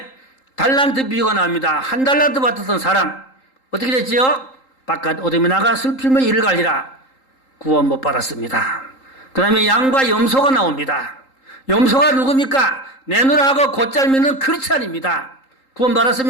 달란트 비유가 나옵니다. 한 달란트 받았던 사람 어떻게 됐지요? 바깥 어둠에 나가 슬픔의 이를 갈리라. 구원 못 받았습니다. 그 다음에 양과 염소가 나옵니다. 염소가 누굽니까? 내놓으라고 곧잘 믿는 크리스찬입니다. 구원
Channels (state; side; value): late; right; 3.8 ms